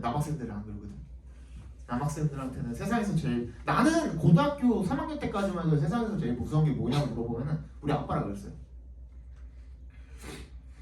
안 그러거든. 남학생들한테는 세상에서 제일 나는 고등학교 3학년 때까지만 해도 세상에서 제일 무서운 게 뭐냐고 물어보면은 우리 아빠라 그랬어요.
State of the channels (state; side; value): identical; both; correlation 1.00